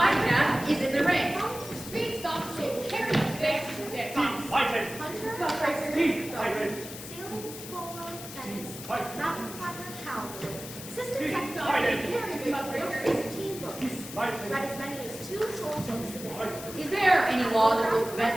path is in the ring. Speed stop, so carry the big stick. Fighting! Hunter, Deep fighting! sailing, polo, tennis, Fighting! mountain climber, cowboy, assistant Deep secretary, fighting! carried wrote 15 books, Fighting! read as many as 2 full books a day. Is there any law that will prevent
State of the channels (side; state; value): left; noise; hiss, 12 dB below the sound